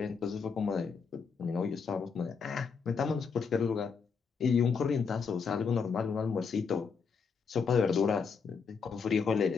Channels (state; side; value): quieter; right; 5.7 dB